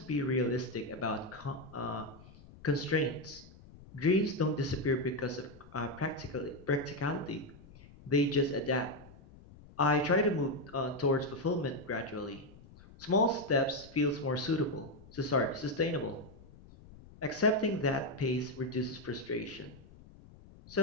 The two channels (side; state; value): left; noise; rumble, 21 dB below the sound